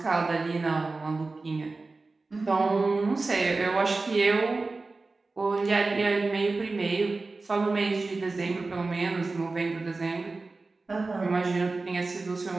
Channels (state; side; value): quieter; left; 3.6 dB